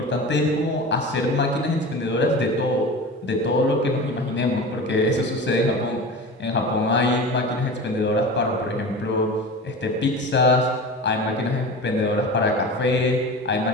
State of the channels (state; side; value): normal; both; correlation 0.32